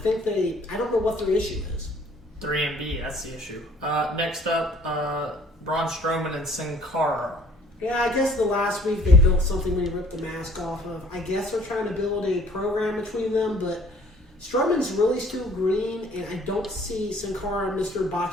I don't know what their issue is. 3MB, that's the issue. Next up, Braun Strowman and Sin Cara. Yeah, I guess the last week they built something when he ripped the mask off of. I guess they're trying to build a program between them, but Strowman's really still green, and I don't see Sin Cara and Mr.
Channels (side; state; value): both; normal; correlation 0.56